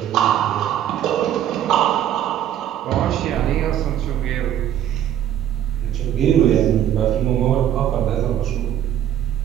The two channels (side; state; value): left; quieter; 10.8 dB